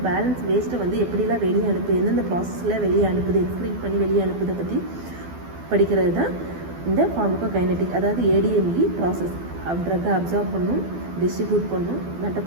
பேலன்ஸ் வேஸ்ட்டை வந்து எப்படிலாம் வெளியே அனுப்புது, எந்தெந்த ப்ராசஸில் வெளியே அனுப்புது, எக்ஸ்க்ரீட் பண்ணி வெளியே அனுப்புதை பற்றி படிக்கிறது தான் இந்த ஃபார்மகோகைனெட்டிக். அதாவது ஏடிஎம்இ ப்ராசஸ். ட்ரக்கை அப்சர்வ் பண்ணும், டிஸ்ட்ரிபியூட் பண்ணும்,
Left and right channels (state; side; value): late; left; 12 ms